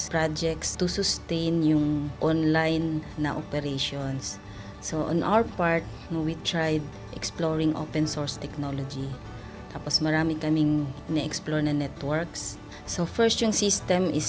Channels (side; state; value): both; identical; correlation 1.00